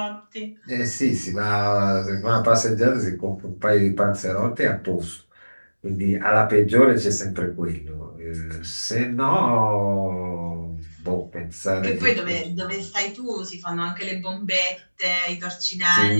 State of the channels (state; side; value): inverted; both; correlation -1.00